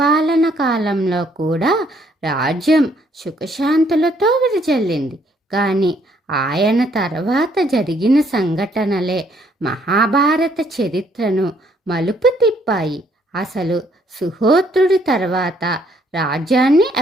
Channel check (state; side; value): normal; both; correlation 0.67